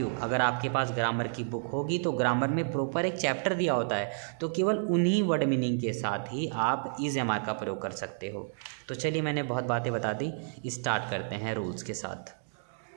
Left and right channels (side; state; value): left; silent; digital silence